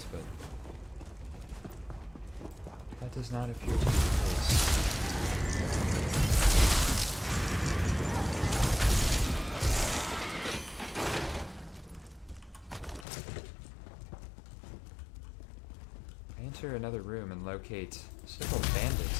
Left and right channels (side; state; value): right; drops out; at 13.1 s